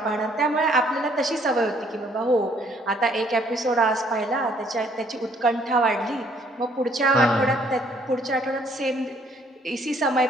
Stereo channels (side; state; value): both; normal; correlation 0.63